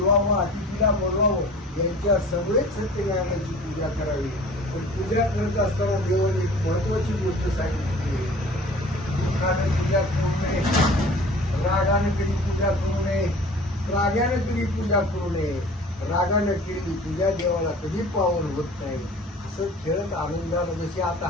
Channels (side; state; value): both; normal; correlation 0.45